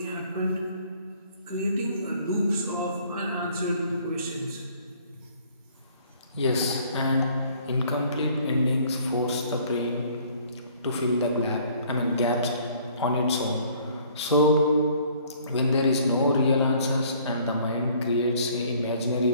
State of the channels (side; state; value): both; inverted; correlation -0.57